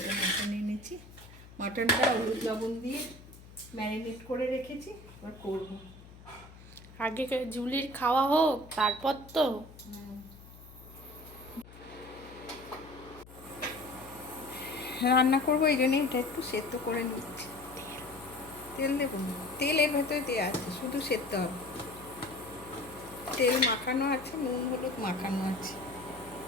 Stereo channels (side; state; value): left; noise; hum, 19 dB below the sound